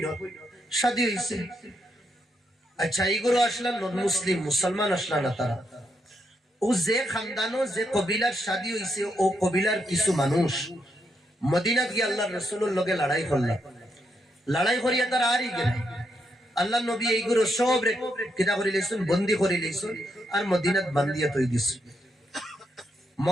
শাদী হইছে। আচ্ছা এইগুলো আসলাম নন মুসলিম, মুসলমান আসলা না তারা। ও যে খানদানো যে কবিলার শাদী হইছে, ও কবিলার কিছু মানুষ মদিনাত গিয়ে আল্লাহ রসুলের লগে লড়াই করলাম। লড়াই করিয়া তারা আরই গেল। আল্লাহ নবী এইগুলো সব কিনা করে লইছেন, বন্দি করে লইছেন আর মদিনাত বান্ধিয়া তৈ দিছে।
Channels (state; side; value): normal; both; correlation 0.80